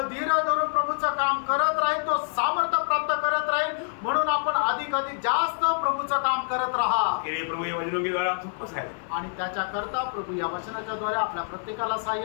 धीर धरून प्रभूचं काम करत राहील तो सामर्थ्य प्राप्त करत राहील। म्हणून आपण अधिक जास्त प्रभूचं काम करत राहा के लिए प्रभु ये वचनों के द्वारा हम सबको सहायता आणि त्याच्या करता प्रभु या वचनाच्या द्वारे आपल्या प्रत्येकाला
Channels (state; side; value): silent; right; 58 dB below the other